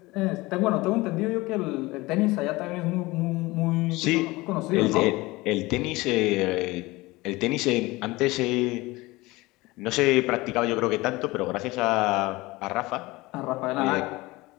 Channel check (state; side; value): quieter; right; 21.2 dB